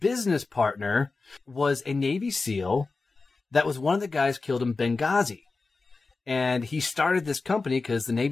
partner was a Navy SEAL that was one of the guys killed in Benghazi. And he started this company because the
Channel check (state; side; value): quieter; right; 3.9 dB